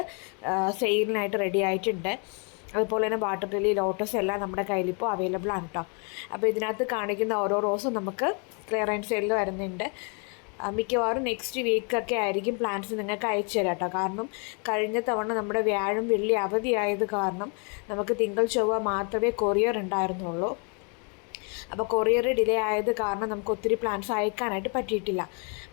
സെയിലിനായിട്ട് റെഡി ആയിട്ടുണ്ട്. അതുപോലെ തന്നെ വാട്ടർ ലില്ലി, ലോട്ടസ് എല്ലാം നമ്മുടെ കയ്യിലിപ്പോൾ അവൈലബിൾ ആണ് കേട്ടോ. അപ്പോൾ ഇതിനകത്ത് കാണിക്കുന്ന ഓരോ റോസും നമുക്ക് ക്ലിയറൻസ് സെയിലിൽ വരുന്നുണ്ട്. മിക്കവാറും നെക്സ്റ്റ് വീക്കൊക്കെ ആയിരിക്കും പ്ലാന്റ്സ് നിങ്ങൾക്ക് അയച്ചു തരാം കേട്ടോ. കാരണം കഴിഞ്ഞ തവണ നമ്മുടെ വ്യാഴം വെള്ളി അവധിയായത് കാരണം നമുക്ക് തിങ്കൾ ചൊവ്വ മാത്രമേ കൊറിയർ ഉണ്ടായിരുന്നുള്ളൂ. അപ്പോൾ കൊറിയർ ഡിലേ ആയത് കാരണം നമുക്ക് ഒത്തിരി പ്ലാന്റ്സ് അയക്കാനായിട്ട് പറ്റിയിട്ടില്ല.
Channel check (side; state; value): right; quieter; 36.4 dB